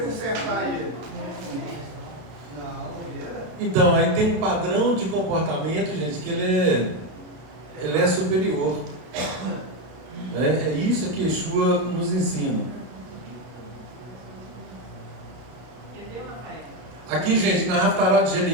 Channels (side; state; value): left; late; 32 ms